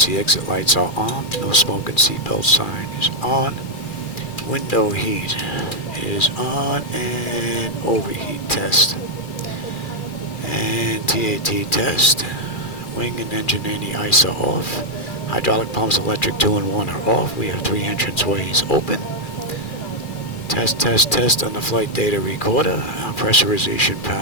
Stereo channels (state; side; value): late; right; 2.4 ms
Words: exit lights are on. No smoke and seatbelt sign is on. Window heat is on, and overheat test. And TAT test. Wing and engine anti-ice are off. Hydraulic pumps, electric 2 and 1 are off. We have 3 entrance ways open. Test, test, test on the flight data recorder. Our pressurization